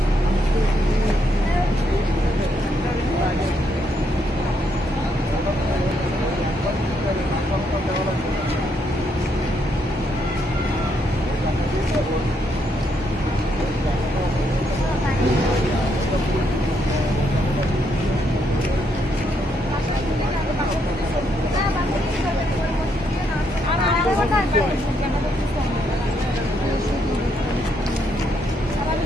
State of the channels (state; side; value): normal; both; correlation 0.75